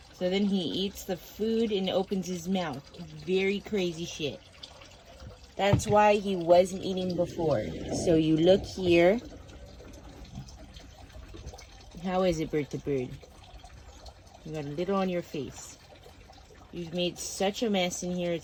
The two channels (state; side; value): identical; both; correlation 1.00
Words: So then he eats the food and opens his mouth. Very crazy shit. That's why he wasn't eating before. So you look here. How is it, Bert the bird? You got a little on your face. You've made such a mess in here,